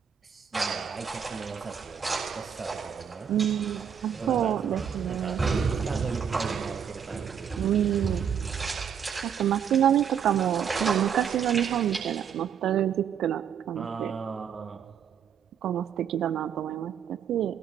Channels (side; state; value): left; quieter; 8.0 dB